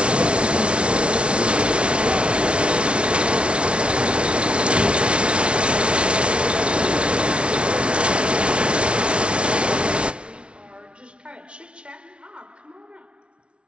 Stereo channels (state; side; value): late; left; 0.059 ms